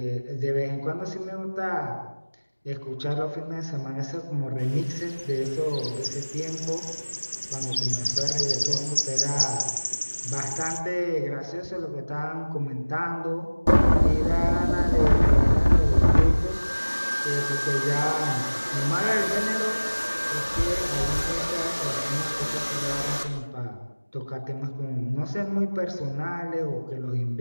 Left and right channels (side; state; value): both; inverted; correlation -1.00